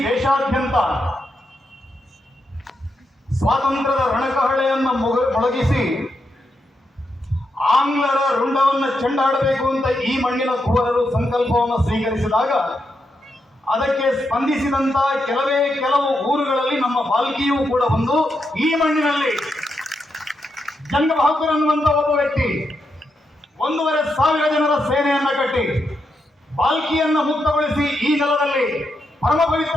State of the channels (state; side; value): normal; both; correlation 0.83